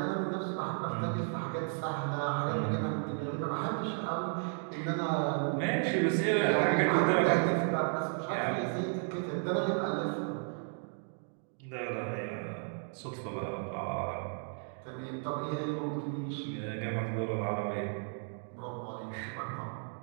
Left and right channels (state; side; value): silent; left; 55 dB below the other